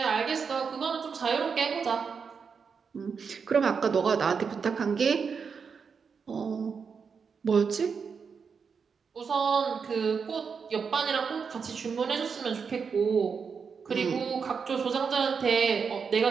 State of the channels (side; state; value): left; quieter; 5.9 dB